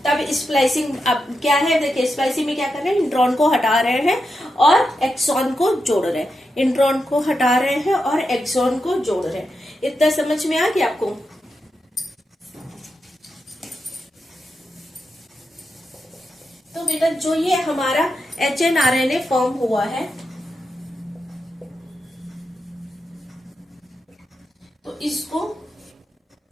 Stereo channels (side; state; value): both; normal; correlation 0.87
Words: तब स्प्लाइसिंग अब क्या है, देखिए स्प्लाइसिंग में क्या कर रहे हैं, इंट्रॉन को हटा रहे हैं और एक्सॉन को जोड़ रहे हैं, इंट्रॉन को हटा रहे हैं और एक्सॉन को जोड़ रहे हैं। इतना समझ में आ गया आपको। तो बेटा जो ये हमारा एचएनआरएनए फॉर्म हुआ है, तो इसको